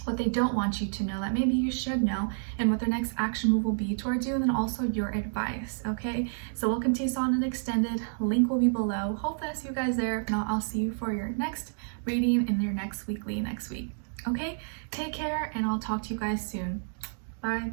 What they don't want you to know that maybe you should know, and what their next action move will be towards you, and then also your advice. Okay, so we'll continue on and extended. Link will be below. Hopefully I see you guys there. If not, I'll see you for your next reading in your next weekly next week. Okay, take care, and I'll talk to you guys soon. Bye.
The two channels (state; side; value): silent; left; digital silence